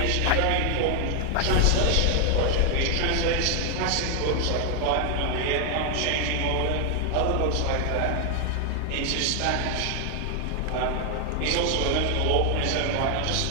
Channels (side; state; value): both; different; correlation 0.00